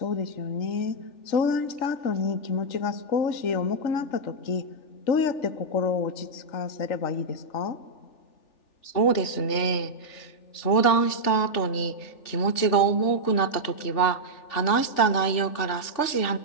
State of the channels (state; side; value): late; right; 3.4 ms